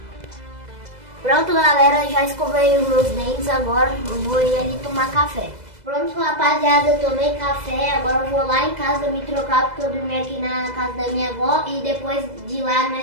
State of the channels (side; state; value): left; late; 2.0 ms